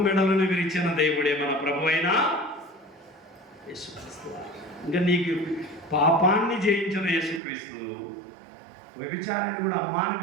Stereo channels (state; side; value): drops out; left; at 7.4 s